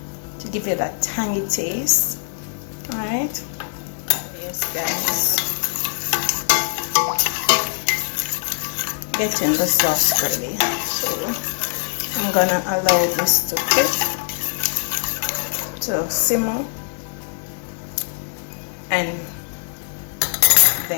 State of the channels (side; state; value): right; silent; digital silence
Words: to give it that tangy taste. Alright, yes guys, getting the sauce ready. So I'm gonna allow this to cook, to simmer, and